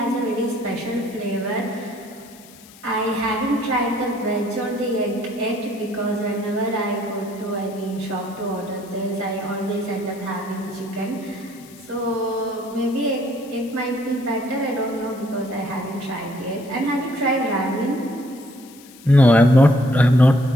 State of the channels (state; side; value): noise; left; hiss, 22 dB below the sound